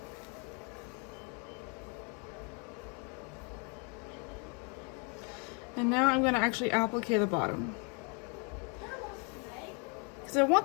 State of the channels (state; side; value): quieter; right; 35.7 dB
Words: And now I'm going to actually applique the bottom, because I want